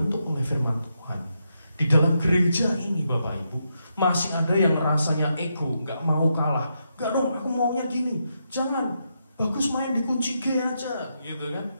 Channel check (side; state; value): both; inverted; correlation -0.82